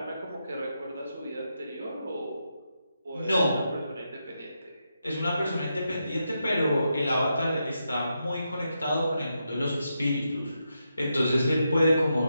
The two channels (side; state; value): both; inverted; correlation -0.85